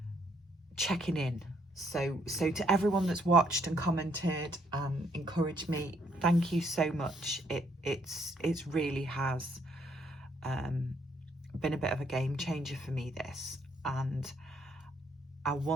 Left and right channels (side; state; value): both; normal; correlation 0.69